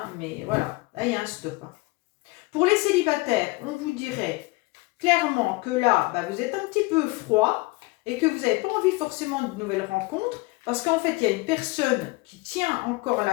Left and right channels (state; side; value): quieter; right; 23.8 dB